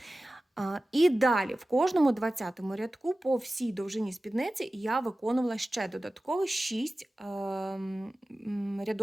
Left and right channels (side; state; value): both; normal; correlation 0.96